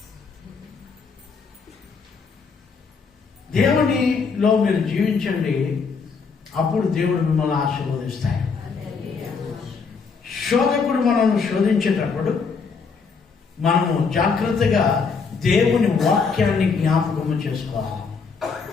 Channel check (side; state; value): right; quieter; 5.2 dB